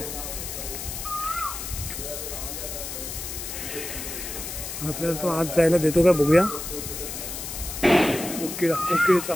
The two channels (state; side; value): noise; left; hiss, 7 dB below the sound